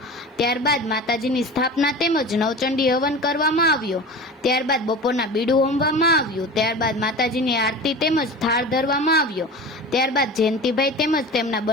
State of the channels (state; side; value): normal; both; correlation 0.34